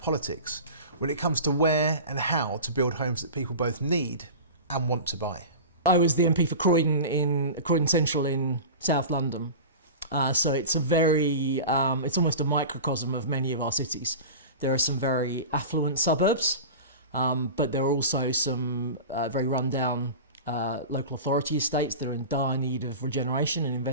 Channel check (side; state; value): both; inverted; correlation -0.31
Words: when it comes to where and how to build homes that people both need and want to buy. I was the MP for Croydon Central in South London. So it's it's almost a microcosm of many of our cities. There are some very affluent suburbs, but there are also some very run-down local authority estates. They're in dire need of regeneration and